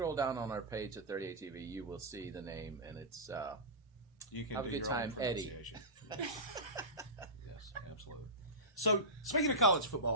down on our page at 38 TV. You will see the name, and it's You can Have a do good your own time, Eddie. pronunciation. Yes, absolutely. So, speaking of college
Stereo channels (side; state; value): both; normal; correlation -0.18